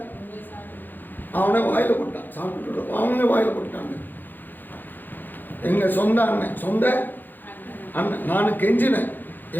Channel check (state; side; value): late; right; 0.089 ms